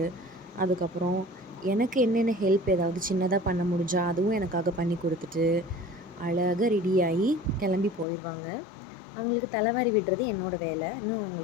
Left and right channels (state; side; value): drops out; right; at 8.1 s